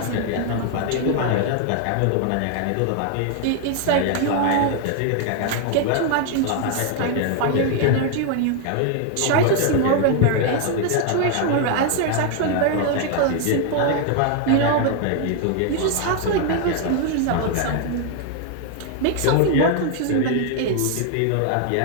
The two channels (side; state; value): both; different; correlation 0.00